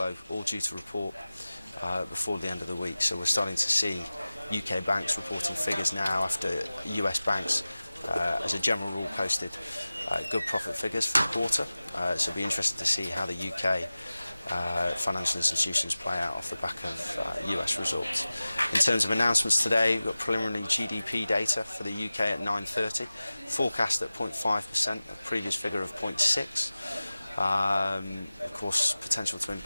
all due to report before the end of the week. So we're starting to see UK banks reporting figures now after US banks, as a general rule, posted good profit figures for the quarter. So it'll be interesting to see how the UK financial institutions play out off the back of US results. In terms of announcements today, we've got preliminary GDP data for the UK at 9:30, forecast at 0.5%, a previous figure of 0.6%. Of course, potential to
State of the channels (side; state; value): both; inverted; correlation -0.97